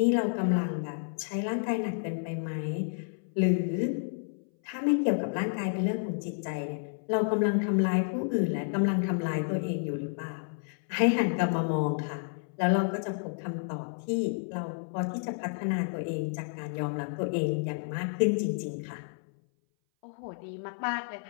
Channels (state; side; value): silent; right; 58 dB below the other